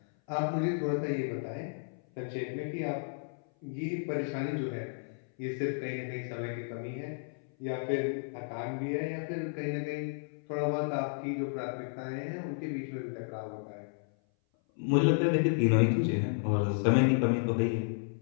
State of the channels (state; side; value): silent; right; 56 dB below the other